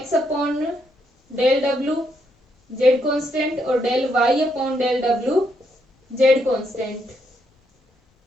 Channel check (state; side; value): normal; both; correlation 0.76